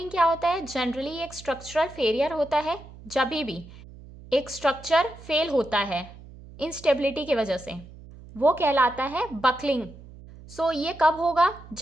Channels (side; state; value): right; noise; hum, 18 dB below the sound